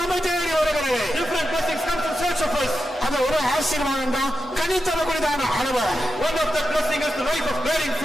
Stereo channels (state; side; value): noise; right; hum, 24 dB below the sound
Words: நம்மை தேடி வருகிறது. Different blessings comes in search of us. அது ஒரு ஆசீர்வாதம் தான் கனித்தரக்கூடியதான அனுபவம். One of the blessing is the life of bearing